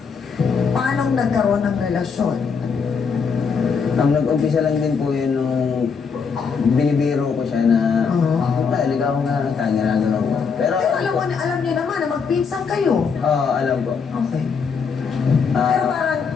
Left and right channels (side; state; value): right; quieter; 5.7 dB